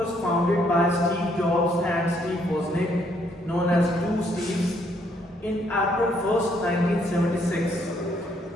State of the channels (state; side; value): normal; both; correlation 0.69